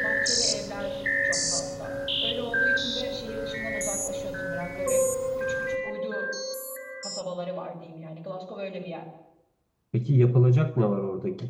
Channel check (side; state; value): both; identical; correlation 1.00